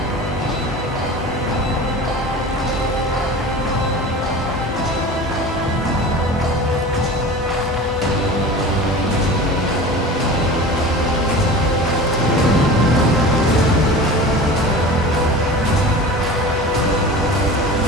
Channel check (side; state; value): both; normal; correlation 0.36